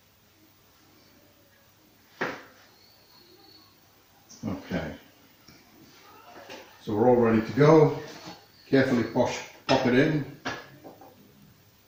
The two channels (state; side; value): identical; both; correlation 1.00